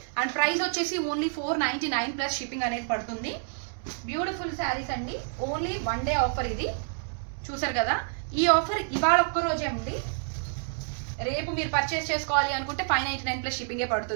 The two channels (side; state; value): left; silent; digital silence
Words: అండ్ ప్రైస్ వచ్చేసి ఓన్లీ 499 ప్లస్ షిప్పింగ్ అనేది పడుతుంది. బ్యూటిఫుల్ శారీస్ అండి, ఓన్లీ 1 day ఆఫర్ ఇది. చూసారు కదా, ఈ ఆఫర్ ఇవాళ ఒక్కరోజే ఉంది. రేపు మీరు పర్చేస్ చేసుకోవాలి అనుకుంటే 599 ప్లస్ షిప్పింగే